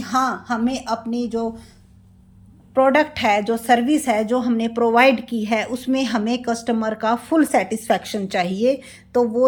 हाँ, हमें अपनी जो प्रोडक्ट है, जो सर्विस है, जो हमने प्रोवाइड की है, उसमें हमें कस्टमर का फुल सेटिस्फैक्शन चाहिए। तो वो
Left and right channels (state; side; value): identical; both; correlation 1.00